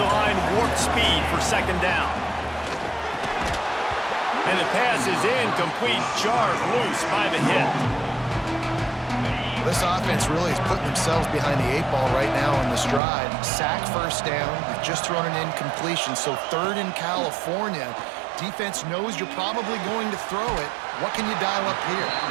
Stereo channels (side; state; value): left; drops out; at 13.0 s